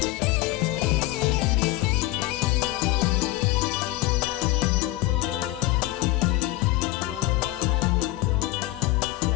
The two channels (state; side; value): quieter; right; 17.9 dB